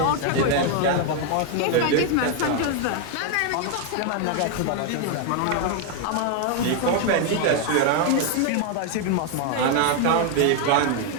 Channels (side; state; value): both; different; correlation 0.00